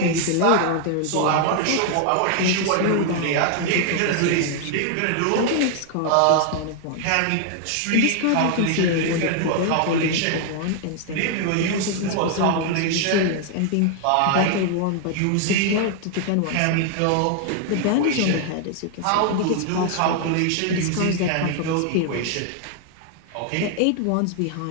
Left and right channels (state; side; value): different; both; correlation 0.00